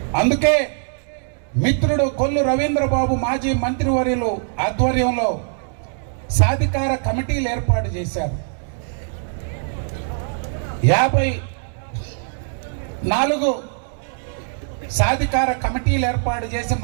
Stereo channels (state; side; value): silent; left; digital silence